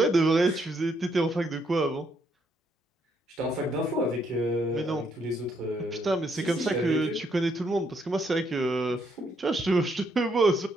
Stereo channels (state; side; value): normal; both; correlation 0.73